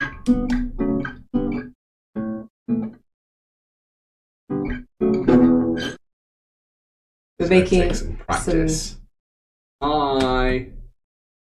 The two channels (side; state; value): both; identical; correlation 1.00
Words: We're making some practice. Hi.